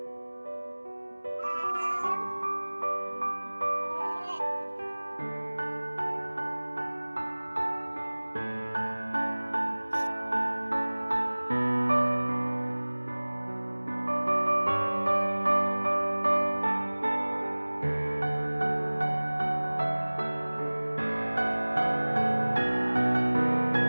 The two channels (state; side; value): inverted; both; correlation -1.00